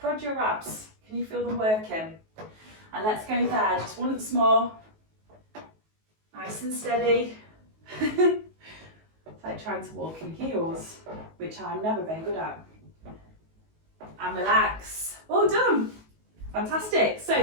your abs. Can you feel them working? And let's go there just once more. Nice and steady. It's like trying to walk in heels, which I'm never very good at. And relax. Well done. Fantastic.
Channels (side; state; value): left; late; 19 ms